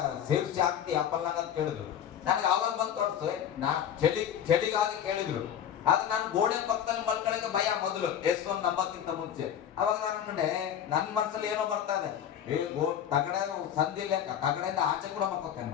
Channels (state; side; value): quieter; right; 9.5 dB